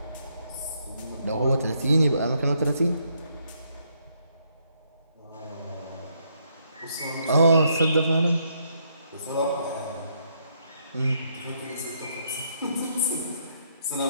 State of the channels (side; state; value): both; inverted; correlation -0.74